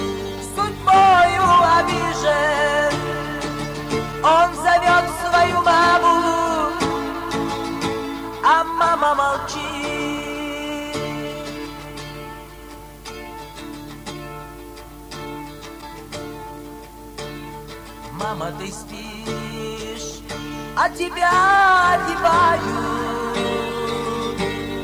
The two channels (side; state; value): both; identical; correlation 1.00